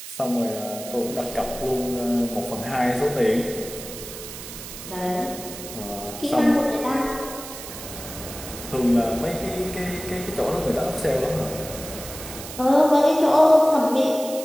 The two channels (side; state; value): right; noise; hiss, 11 dB below the sound